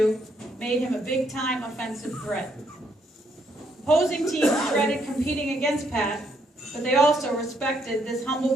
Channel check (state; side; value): normal; both; correlation 0.73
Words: made him a big-time offensive threat. Opposing teams dreaded competing against Pat, but they also respected this